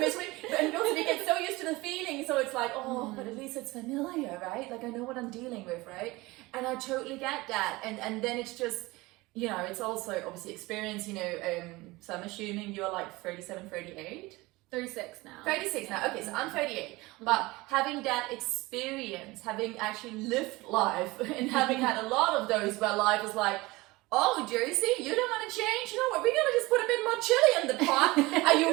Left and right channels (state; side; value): quieter; left; 21.5 dB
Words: And also we get so used to the feeling, so it's like, but at least it's familiar, right? Like I know what I'm dealing with, right? And I totally get that. And then it's just, it's also obviously experience, so I'm assuming you're like 37, 38? 36 now. 36 now, okay, so I'm 38. But having that experience, having actually lived life, and having had a lot of those where life is like, oh, Josie, you don't want to change? You know what, we're going to just put a bit more chili in the pot. Are